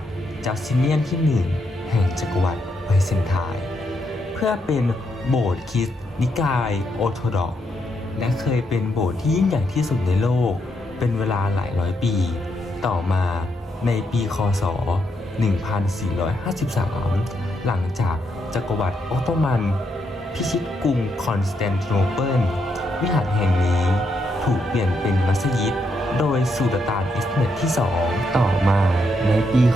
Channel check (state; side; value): normal; both; correlation 0.79